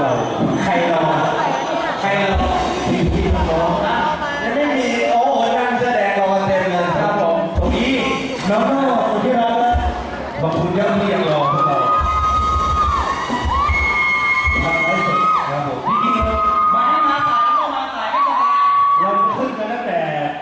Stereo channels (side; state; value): both; identical; correlation 1.00